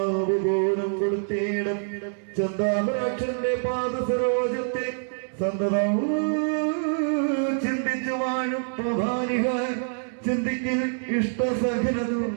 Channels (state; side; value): silent; left; digital silence